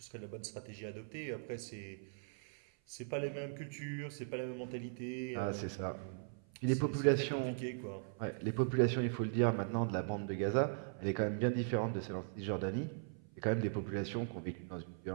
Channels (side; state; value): left; silent; 51 dB below the other